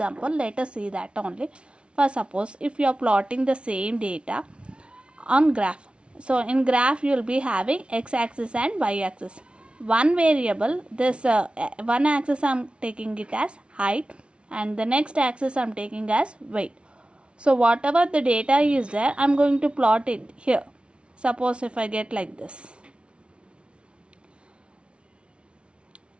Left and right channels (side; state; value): left; late; 0.059 ms